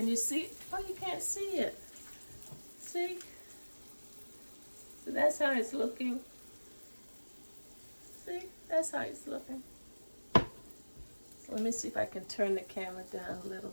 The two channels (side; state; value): both; inverted; correlation -1.00